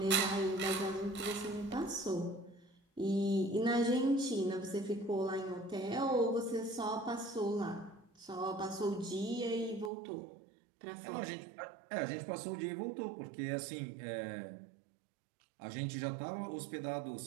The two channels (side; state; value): left; drops out; at 9.9 s